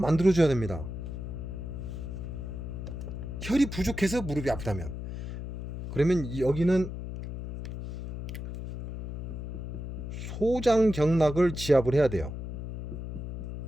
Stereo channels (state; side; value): noise; left; hum, 6 dB below the sound